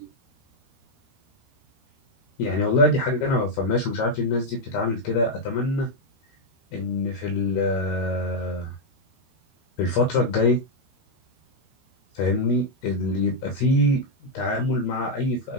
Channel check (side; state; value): right; late; 13 ms